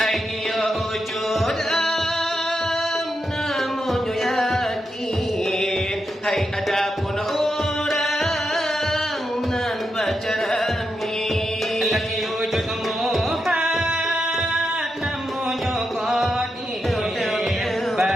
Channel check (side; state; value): both; normal; correlation 0.85